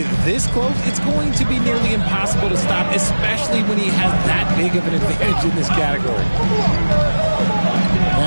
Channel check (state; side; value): inverted; both; correlation -1.00